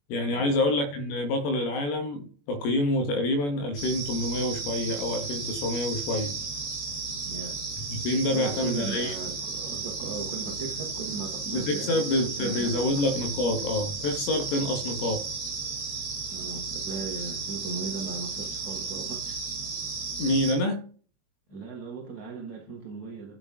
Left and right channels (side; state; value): right; late; 21 ms